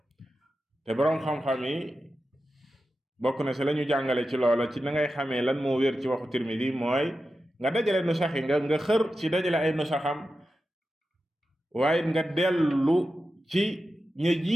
te boroom xam-xam yi bokk na si la ñu jàngale ci loola ci na ngay xamee lan moo wér ci waxu Tirmidi mooy nga dajale nu sax yi nga xër ci dajale ay nu saxam, waaye nga dellu ci ña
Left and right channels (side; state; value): both; normal; correlation 0.91